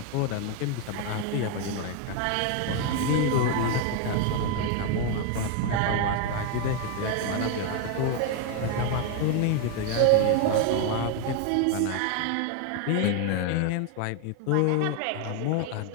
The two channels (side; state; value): both; different; correlation 0.01